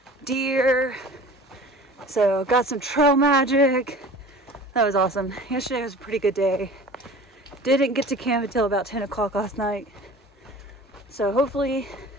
deer. So got some trail magic. That was awesome. Yesterday was a pretty good day. Didn't get to camp until about 10 o'clock last night. So hopefully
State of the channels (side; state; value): both; normal; correlation 0.42